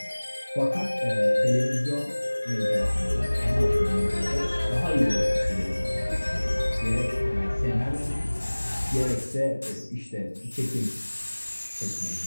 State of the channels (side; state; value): both; inverted; correlation -1.00